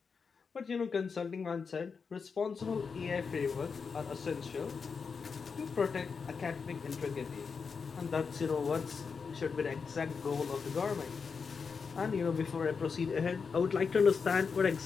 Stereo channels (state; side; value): quieter; right; 5.5 dB